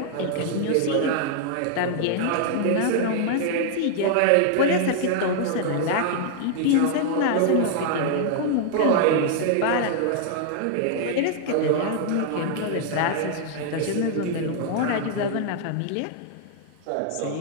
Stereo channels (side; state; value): both; different; correlation -0.01